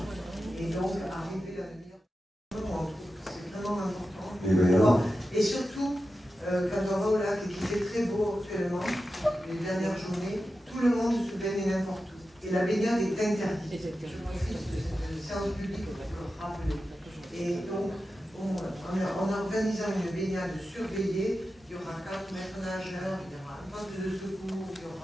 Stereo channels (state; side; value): normal; both; correlation 0.92